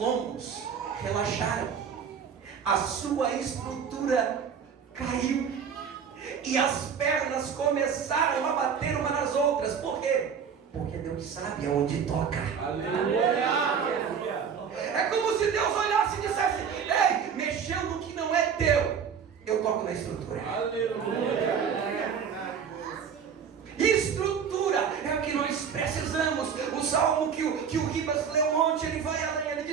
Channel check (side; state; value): left; quieter; 7.0 dB